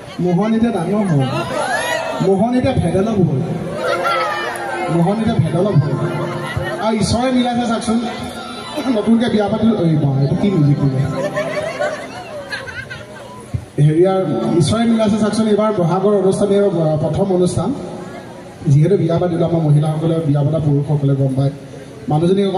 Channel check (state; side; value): identical; both; correlation 1.00